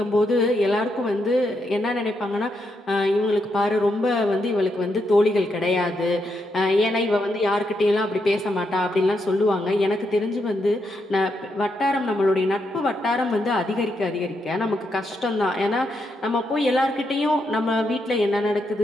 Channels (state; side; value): normal; both; correlation 0.81